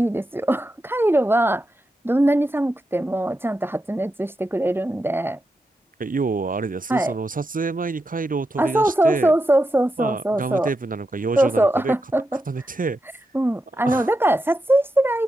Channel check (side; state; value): both; normal; correlation 0.87